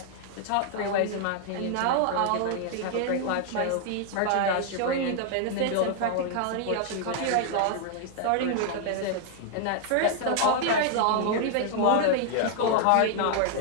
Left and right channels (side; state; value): both; different; correlation 0.00